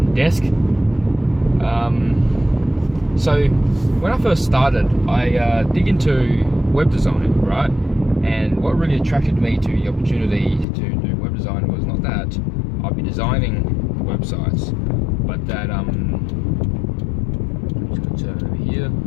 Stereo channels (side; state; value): right; drops out; at 10.7 s